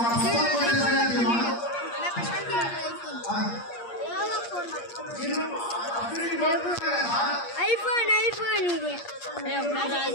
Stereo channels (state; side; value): late; right; 8.5 ms